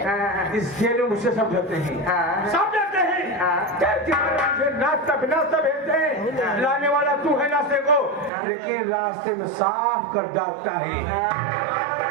हाँ। इसके लिए मुझसे सब डरते हैं। हाँ। सब डरते हैं। हाँ। मुझे नाश्ता भेजते हैं। लाने वाला तू है नाश्ते को, लेकिन रास्ते में साफ कर डालता है।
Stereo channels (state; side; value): drops out; left; at 8.3 s